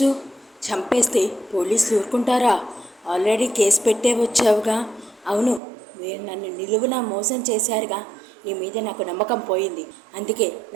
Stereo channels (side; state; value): left; drops out; at 5.6 s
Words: చంపేస్తే పోలీసులు ఊరుకుంటారా? ఆల్రెడీ కేసు పెట్టే వచ్చావుగా. అవును, మీరు నన్ను నిలువున మోసం చేశారుగా. నీ మీద నాకు నమ్మకం పోయింది. అందుకే